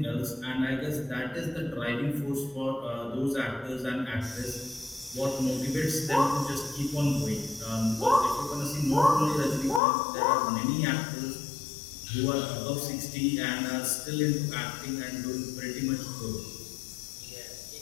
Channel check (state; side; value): drops out; right; at 9.8 s